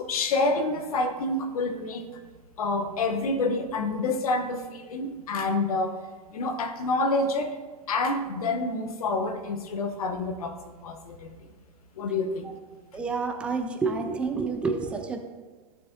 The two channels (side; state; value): both; normal; correlation 0.18